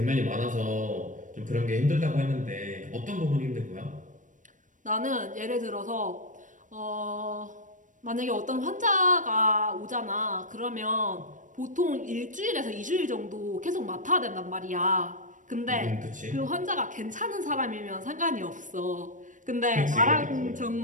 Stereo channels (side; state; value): left; late; 0.37 ms